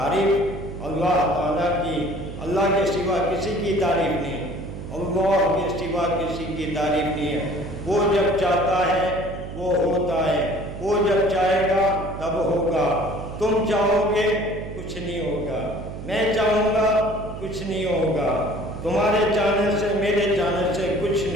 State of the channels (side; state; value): right; noise; hum, 10 dB below the sound